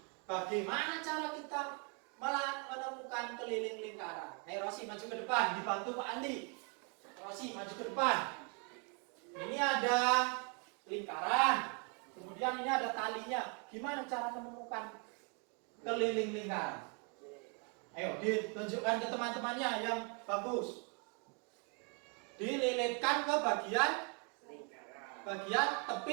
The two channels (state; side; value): quieter; left; 36.4 dB